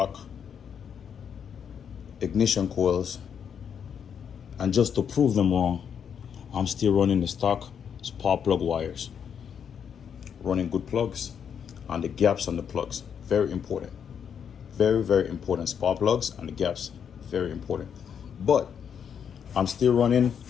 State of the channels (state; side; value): quieter; right; 7.7 dB